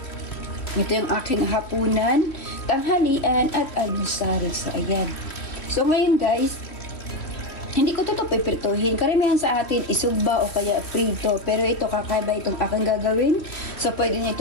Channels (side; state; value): right; late; 3.2 ms